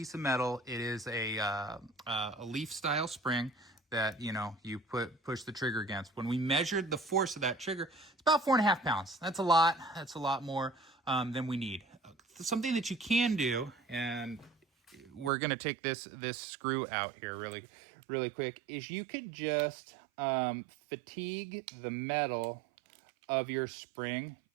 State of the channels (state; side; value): drops out; left; at 15.3 s